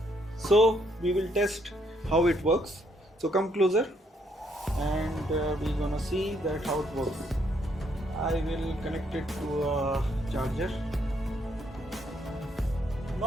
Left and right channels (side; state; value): both; normal; correlation 0.72